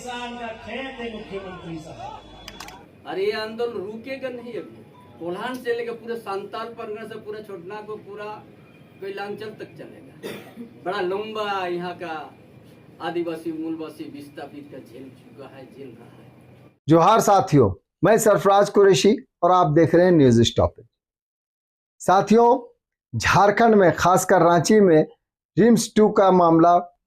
का खेत है मुख्यमंत्री साहब। अरे ये आंदोलन रुकेगा नहीं। अभी कोल्हान से लेकर पूरे सांताल परगना से पूरा छोटना को पूरा कैलांचल तक चलेगा। बड़ा लंबा यहाँ का आदिवासी मूलवासी विस्थापित का झेल चुका है, झेल रहा है। जोहार साथियों, मैं सरफराज कुरैशी और आप देख रहे हैं न्यूज स्टॉपेज। साथियों, झारखंड में खासकर रांची में रिम्स 2 का मामला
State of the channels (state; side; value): identical; both; correlation 1.00